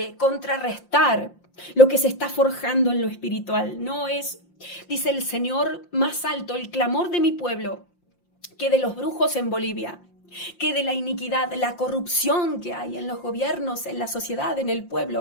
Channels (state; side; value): late; right; 5.7 ms